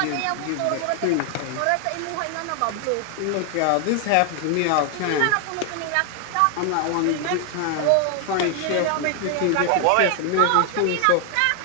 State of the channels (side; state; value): both; different; correlation 0.00